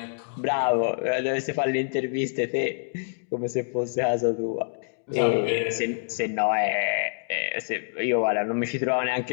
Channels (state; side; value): silent; right; digital silence